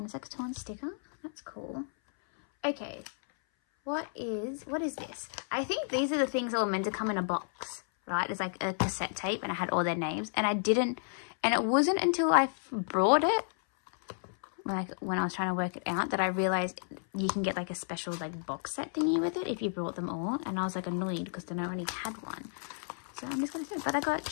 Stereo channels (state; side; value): silent; right; 56 dB below the other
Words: It's like a torn sticker. That's cool. Okay, what is this? I think these are the things that were meant to come in a box, right? It's like a cassette tape and I had all their names and I didn't, and it wasn't until I brought it, like when I was trying to work it out, that I realized you can get like a special like box set thingy with it if you brought them all. And I was like annoyed because then I already had one. So I'm just gonna say, but I got